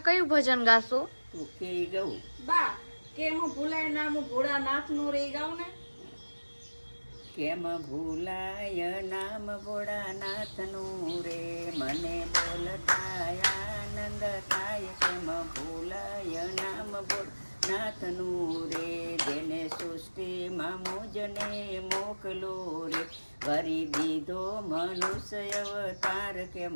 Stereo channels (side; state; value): both; inverted; correlation -1.00